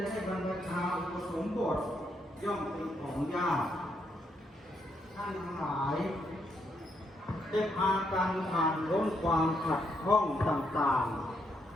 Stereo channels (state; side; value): normal; both; correlation 0.76